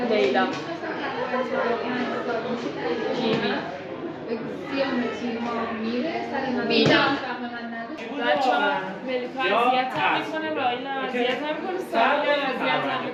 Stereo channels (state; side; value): identical; both; correlation 1.00